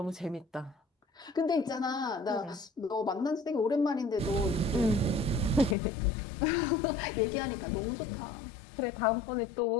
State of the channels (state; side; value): drops out; right; at 5.8 s